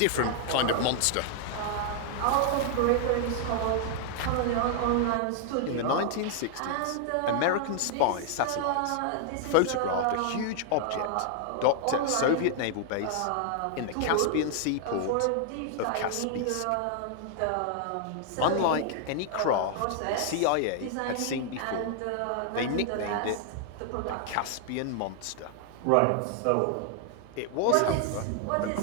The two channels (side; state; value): both; different; correlation -0.01